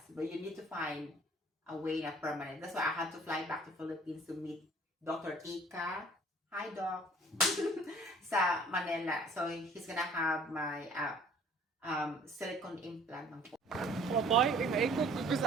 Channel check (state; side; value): normal; both; correlation 0.53